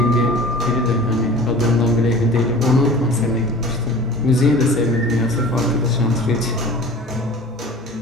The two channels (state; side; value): normal; both; correlation 0.41